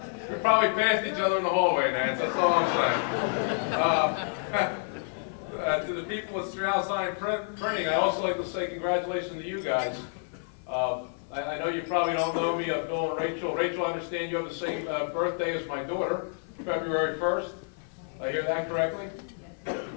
we probably passed each other in the hallway, Nance, that's all I'm saying. To the people at Strassheim Printing, I'd also like to say congratulations to you guys. I know you probably don't know me, Bill and Rachel. Rachel, I understand you have the same birthday as my daughter, February 1st. I hear that correctly?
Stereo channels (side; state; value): right; silent; 59 dB below the other